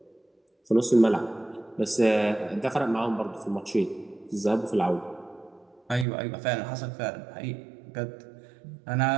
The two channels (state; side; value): drops out; left; at 6.1 s